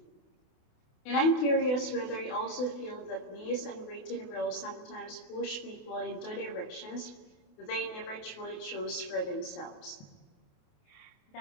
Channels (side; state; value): right; late; 28 ms